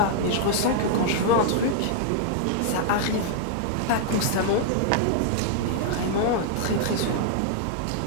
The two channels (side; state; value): both; different; correlation -0.01